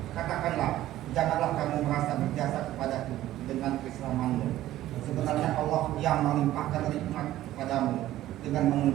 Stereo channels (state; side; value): quieter; left; 14.3 dB